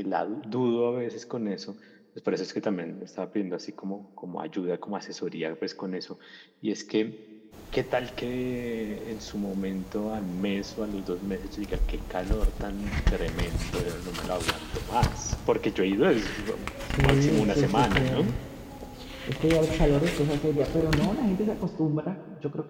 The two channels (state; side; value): identical; both; correlation 1.00